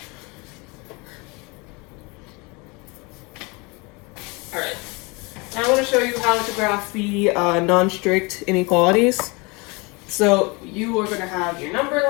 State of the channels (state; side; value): quieter; right; 27.7 dB